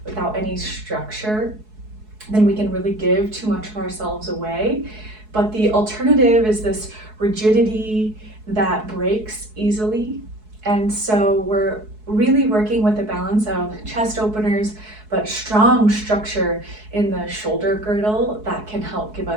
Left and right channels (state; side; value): late; left; 4.7 ms